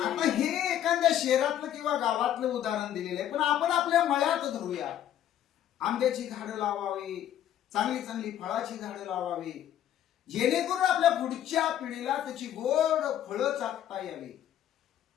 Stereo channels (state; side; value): quieter; right; 11.0 dB